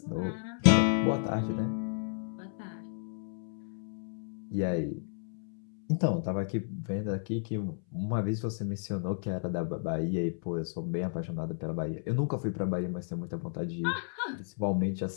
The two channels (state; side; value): silent; right; 56 dB below the other